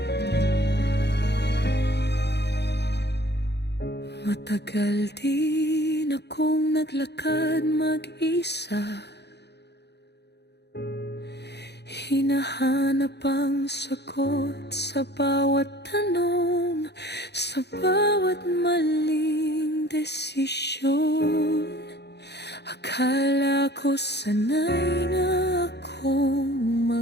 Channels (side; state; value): right; late; 0.49 ms